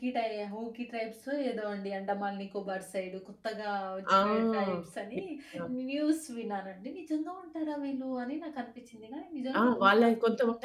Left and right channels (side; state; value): both; identical; correlation 1.00